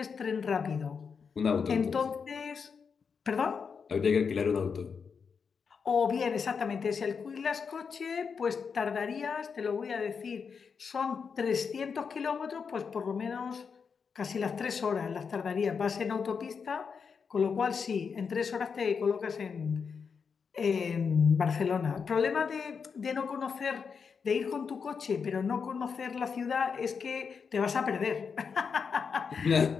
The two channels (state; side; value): quieter; right; 5.9 dB